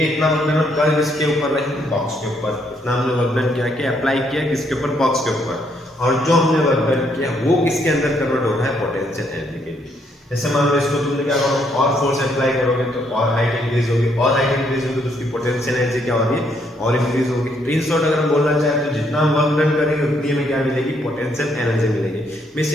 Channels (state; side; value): normal; both; correlation 0.72